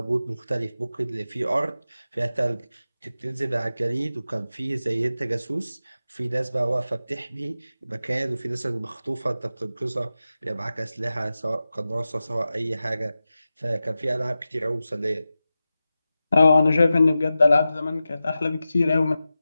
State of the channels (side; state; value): both; inverted; correlation -0.94